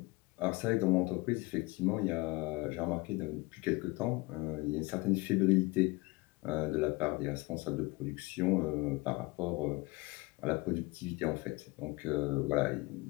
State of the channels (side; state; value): right; quieter; 24.0 dB